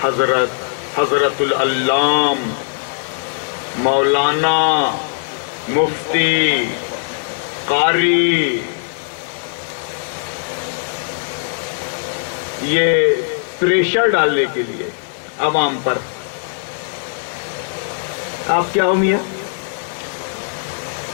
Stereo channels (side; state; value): right; silent; 62 dB below the other